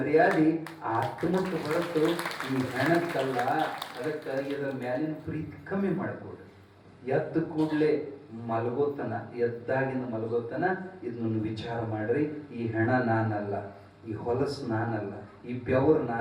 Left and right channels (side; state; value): both; identical; correlation 1.00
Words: ಆತ್ಮಕ್ಕೆ ಹೊರತು ಈ ಹೆಣಕ್ಕಲ್ಲ. ಅದಕ್ಕೆ ಇದರ ಮ್ಯಾಲಿನ ಪ್ರೀತಿ ಕಮ್ಮಿ ಮಾಡ್ಕೊಡ್ರಿ. ಎದ್ದ ಕೂಡಲೇ ಮಲಗೋತನ, ಎದ್ದಾಗಿನ ಮಲಗೋತನ ಇದನ್ನು ವಿಚಾರ ಮಾಡ್ರಿ. ಈ ಹೆಣ ನಾನಲ್ಲ, ಈ ಹೊಲಸು ನಾನಲ್ಲ, ಈ ಬೆವರು